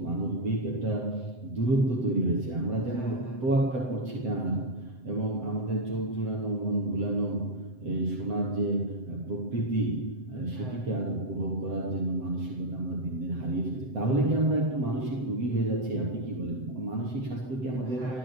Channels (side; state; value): left; late; 7.8 ms